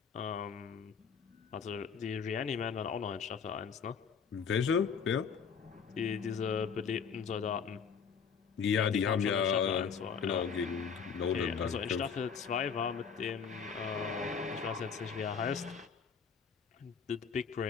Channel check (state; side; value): quieter; right; 6.5 dB